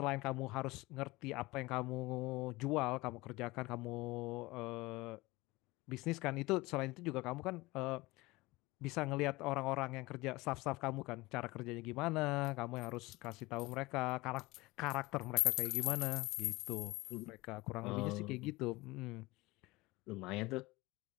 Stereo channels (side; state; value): right; quieter; 21.4 dB